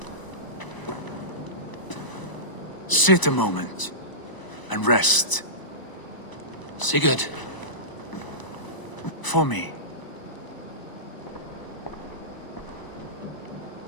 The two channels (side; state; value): right; late; 1.0 ms